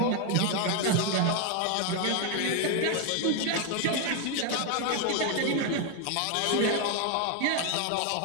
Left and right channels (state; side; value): different; both; correlation 0.01